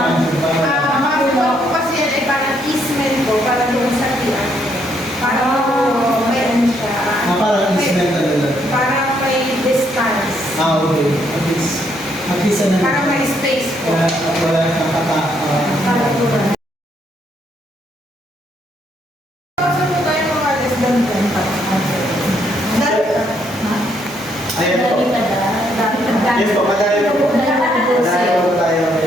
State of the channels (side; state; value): both; normal; correlation 0.72